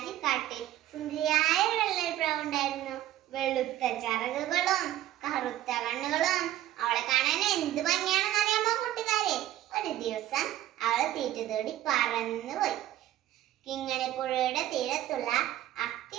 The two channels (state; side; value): quieter; left; 13.5 dB